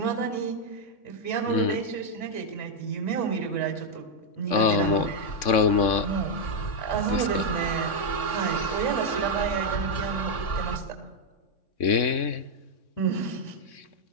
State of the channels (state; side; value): late; right; 3.6 ms